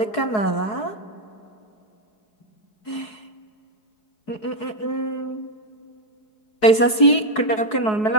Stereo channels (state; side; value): late; right; 4.7 ms